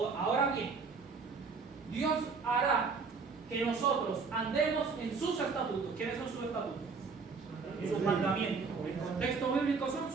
bien, Dios hará que nosotros andemos en sus estatutos. ¿Quiénes son sus estatutos? Sus mandamientos. El contexto bíblico son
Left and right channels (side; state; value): left; quieter; 4.9 dB